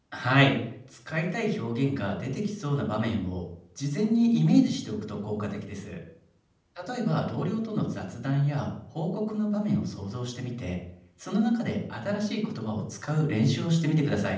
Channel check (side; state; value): both; identical; correlation 1.00